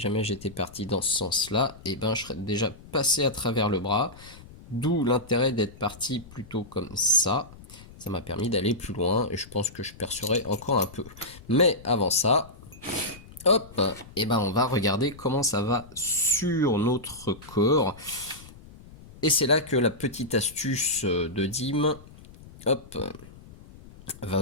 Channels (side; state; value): left; noise; rumble, 20 dB below the sound